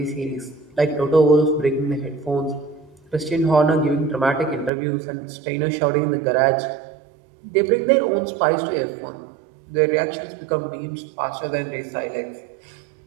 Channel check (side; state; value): left; drops out; at 4.7 s